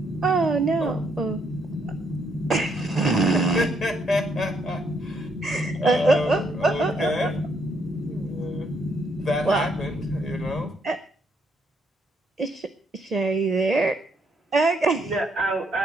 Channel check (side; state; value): both; normal; correlation 0.73